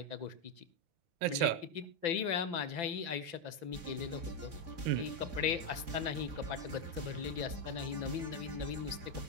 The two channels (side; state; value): left; late; 5.9 ms